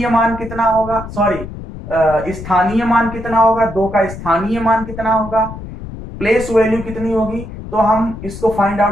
मान कितना होगा, सॉरी स्थानीय मान कितना होगा, दो का स्थानीय मान कितना होगा, प्लेस वैल्यू कितनी होगी। तो हम इसको फाइंड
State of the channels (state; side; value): noise; left; rumble, 11 dB below the sound